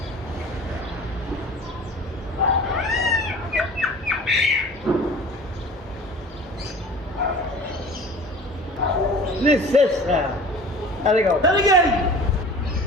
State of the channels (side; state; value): both; normal; correlation 0.42